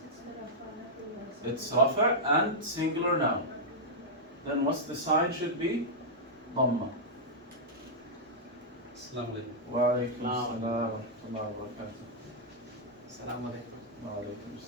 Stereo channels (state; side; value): normal; both; correlation -0.09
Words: It's rafa' and singular noun. Then what's the sign should be? Dhamma. Assalamu alaikum. Wa alaykum assalam wa rahmatullahi wa barakatuh. Assalamu alaikum. Wa alaykum